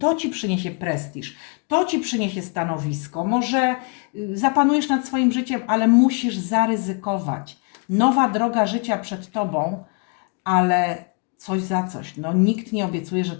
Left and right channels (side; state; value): right; quieter; 36.5 dB